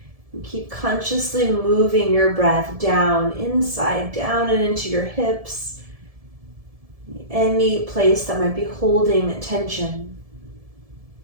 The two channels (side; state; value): left; late; 1.7 ms